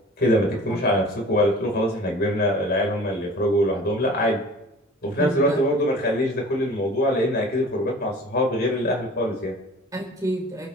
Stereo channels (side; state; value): both; normal; correlation 0.44